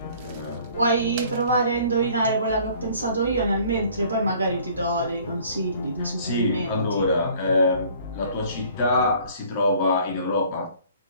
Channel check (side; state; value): both; inverted; correlation -0.54